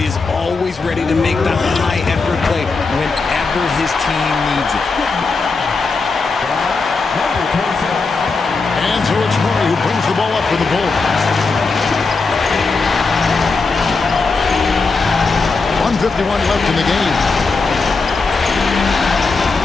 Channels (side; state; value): right; quieter; 4.2 dB